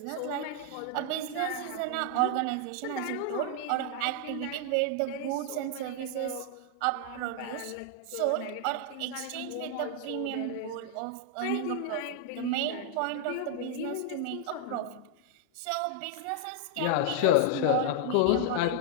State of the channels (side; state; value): both; different; correlation 0.00